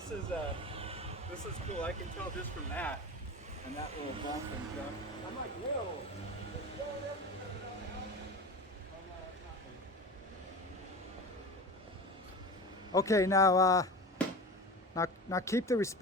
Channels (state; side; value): normal; both; correlation 0.30